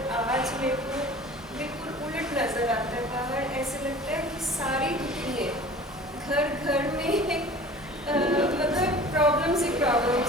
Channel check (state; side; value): normal; both; correlation 0.42